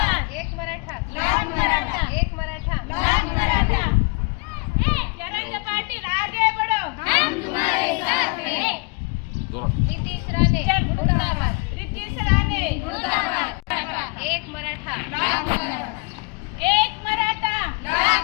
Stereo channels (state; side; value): quieter; right; 29.7 dB